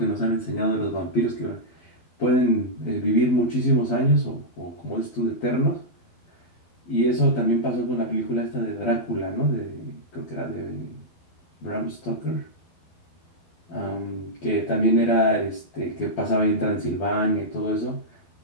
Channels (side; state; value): right; late; 12 ms